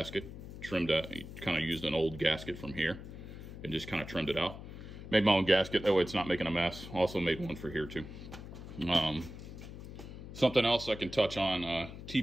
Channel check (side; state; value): left; noise; hum, 12 dB below the sound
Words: trimmed out, kind of used an old gasket from here and just kind of trimmed it out. Made my own gasket, that way it's not making a mess. Also made one for here too. Something else I can touch on,